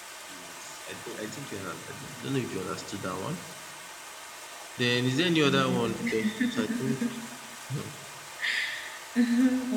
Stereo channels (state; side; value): identical; both; correlation 1.00